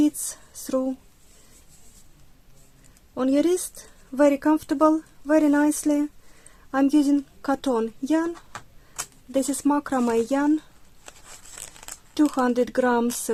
through on your wrist, very comfortable, very nicely. I'm using cotton yarn. This is macrame yarn, 200 grams,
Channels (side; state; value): both; identical; correlation 1.00